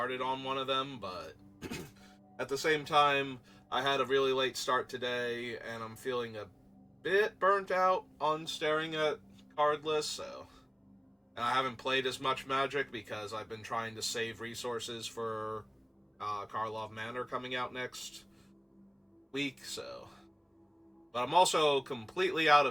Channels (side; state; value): both; identical; correlation 1.00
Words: on one of them, but at the same time, I had a really late start today, and I'm feeling a bit burnt out on staring at card lists, so. And I haven't played as much Magic because I've been trying to save resources for Karlov Manor coming out next week, so. But I'm also completely out